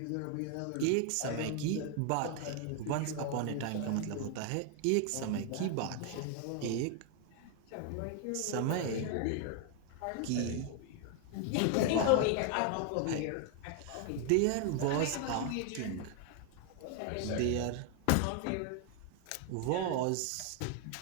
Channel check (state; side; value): different; both; correlation 0.00